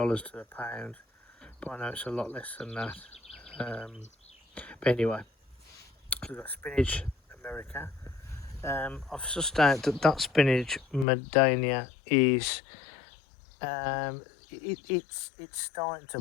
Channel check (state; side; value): drops out; right; at 11.1 s